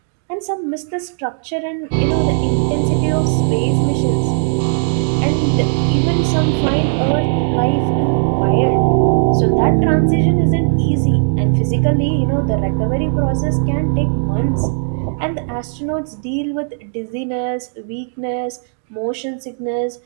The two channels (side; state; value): left; silent; 65 dB below the other